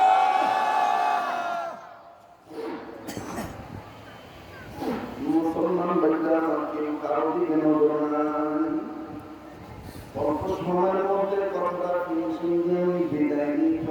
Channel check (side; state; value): both; identical; correlation 1.00